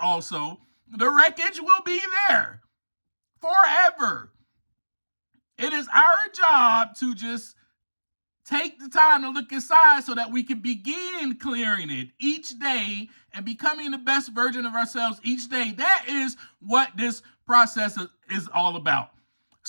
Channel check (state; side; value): inverted; both; correlation -1.00